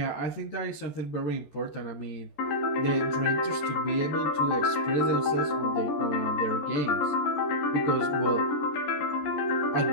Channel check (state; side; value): late; right; 14 ms